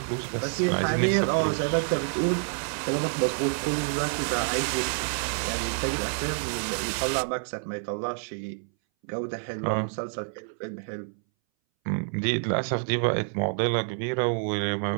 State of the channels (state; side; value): silent; left; 60 dB below the other